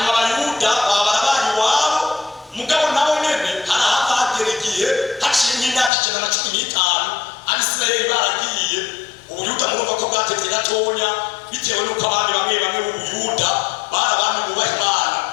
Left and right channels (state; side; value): drops out; right; at 5.9 s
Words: Abayuda baba barabaye iwabo, mugabo nabo nyene harahava hagera igihe haciye nk'imyaka 115 Abisirayeli baragiye. Ubuyuda murumva ko bwatevye gatonya bitewe n'uko abandi bamwe b'Ubuyuda bari abami bubaha Imana.